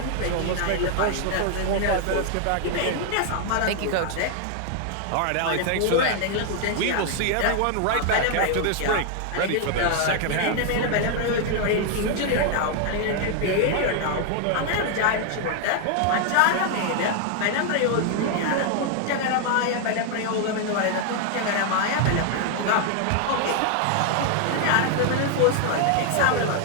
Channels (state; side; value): different; both; correlation 0.00